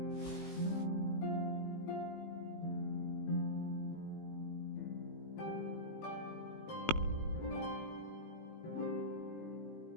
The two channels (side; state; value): right; late; 19 ms